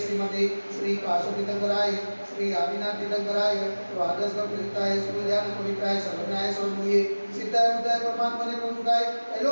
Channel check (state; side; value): inverted; both; correlation -1.00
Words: श्रीमते श्री काशोतीर्थंकराय श्री आदिनाथ तीर्थंकराय द्वादश प्रसिद्धाय सुज्ञान पवित्राय सर्वज्ञाय सर्वमूये सिद्धाय बुद्धाय परमात्मने प्रमुखाय